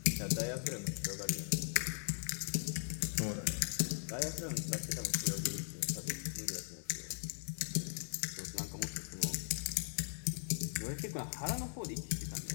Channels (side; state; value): right; silent; 52 dB below the other